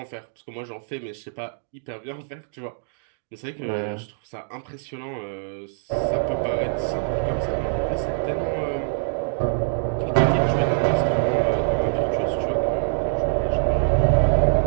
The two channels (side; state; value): left; silent; digital silence